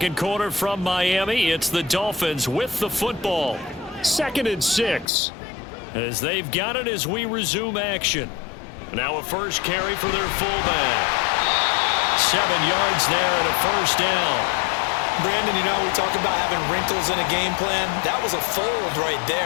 quarter from Miami. It's the Dolphins with the football. 2nd and 6. As they've got it as we resume action. Now a first carry for their fullback. 7 yards there and a 1st down. Brandon, you know, we talk about having wrinkles in a game plan. That was a fold right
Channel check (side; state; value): right; drops out; at 5.1 s